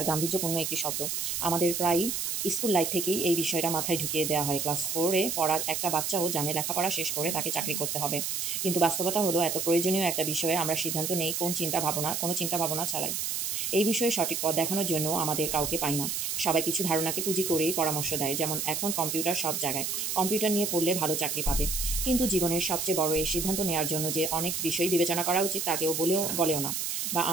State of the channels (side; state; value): right; noise; hiss, 1 dB below the sound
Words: গাম্ভীর্যপূর্ণ একটি শব্দ। আমাদের প্রায়ই স্কুল লাইফ থেকেই এই বিষয়টা মাথায় ঢুকিয়ে দেওয়া হয়। ক্লাস 4-এ পড়ার একটা বাচ্চাও জানে লেখাপড়া শেষ করে তাকে চাকরি করতে হবে। কিন্তু বাস্তবতা হলো এত প্রয়োজনীয় একটা বিষয়ে আমরা সিদ্ধান্ত নেই কোনো চিন্তা ভাবনা ছাড়াই। এই বিষয়ে সঠিক পথ দেখানোর জন্য আমাদের কাউকে পাই না। সবাই কিছু ধারণাকে পুঁজি করেই পরামর্শ দেয়, যেমন এখন কম্পিউটার সব জায়গায়, কম্পিউটার নিয়ে পড়লে ভালো চাকরি পাবে। কিন্তু জীবনের সবচেয়ে বড় এই সিদ্ধান্ত নেওয়ার জন্য যে অনেক বিষয় বিবেচনা করা উচিত তা কেউ বলেও না, বা